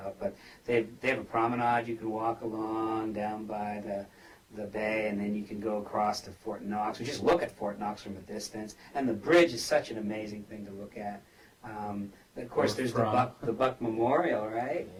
But they have a promenade you can walk along down by the bay, and then you can go across to Fort Knox, or just look at Fort Knox from a distance. And the bridge is such an amazing thing to look at. Of course, there's the Buck Memorial, right?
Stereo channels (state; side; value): identical; both; correlation 1.00